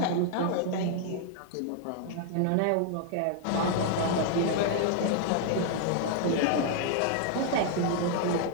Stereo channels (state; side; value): different; both; correlation 0.00